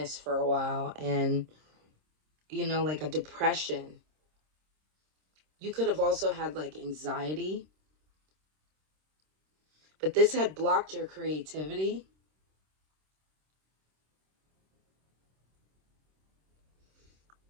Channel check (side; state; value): left; late; 26 ms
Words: for a while, and you know, like a depression. You could have also had like anxiety, but this had blocked your creativity.